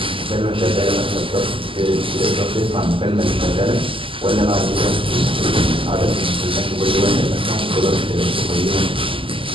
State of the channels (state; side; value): late; left; 0.25 ms